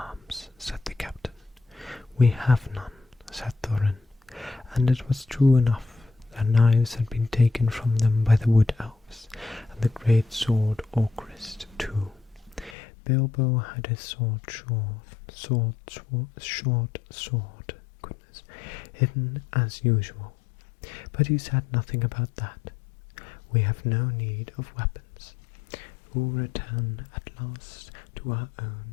said the captain. "We have none," said Thorin, and it was true enough. Their knives had been taken from them by the wood elves, and the great sword Orcrist too. Bilbo had his short sword, hidden as usual, but he said nothing about that. "We have no need of weapons. We'll return at last to our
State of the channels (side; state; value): right; drops out; at 12.8 s